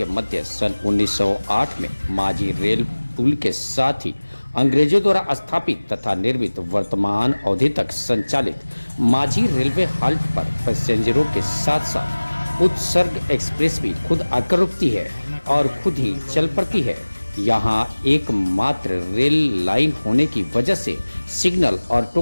मध्य सन 1908 में माझी रेल पुल के साथ ही अंग्रेजों द्वारा स्थापित तथा निर्मित वर्तमान अवधि तक संचालित माझी रेलवे हाल्ट पर पैसेंजरों के साथ साथ उत्सर्ग एक्सप्रेस भी खुद आकर रुकती है और खुद ही चल पड़ती है। यहाँ एकमात्र रेल लाइन होने की वजह से सिग्नल और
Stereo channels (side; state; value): both; inverted; correlation -1.00